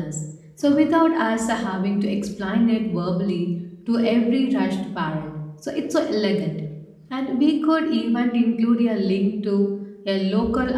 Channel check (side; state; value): both; identical; correlation 1.00